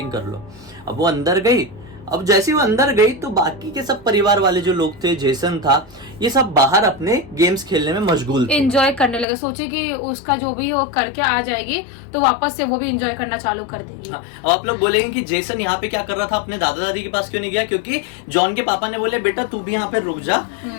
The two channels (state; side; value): drops out; right; at 9.2 s